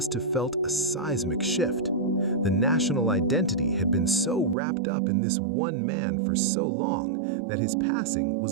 have felt a seismic shift. The national identity had been so wrapped up in this one man for so long that his passing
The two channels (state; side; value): drops out; left; at 4.5 s